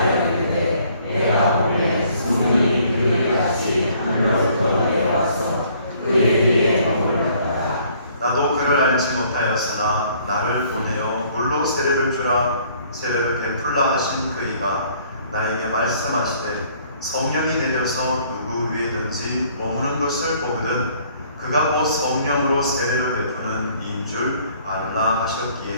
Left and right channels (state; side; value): inverted; both; correlation -0.61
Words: 이르되 내가 보내 성령이 그에게 같이 하늘로부터 내려와서 그의 뒤에 머물렀다. 나도 그를 알지 못하였으나 나를 보내어 물로 세례를 주라 세례를 베풀라 하신 그이가 나에게 말씀하시되 성령이 내려서 누구 위에든지 머무는 것을 보거든 그가 곧 성령으로 세례를 베푸는 이인 줄 알라